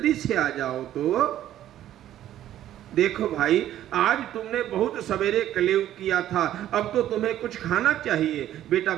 से आ जाओ। तो देखो भाई, आज तुमने बहुत सवेरे कलेव किया था, अब तो तुम्हें कुछ खाना चाहिए। बेटा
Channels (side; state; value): left; quieter; 12.3 dB